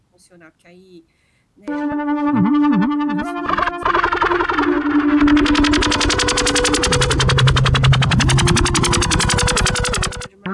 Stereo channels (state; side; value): identical; both; correlation 1.00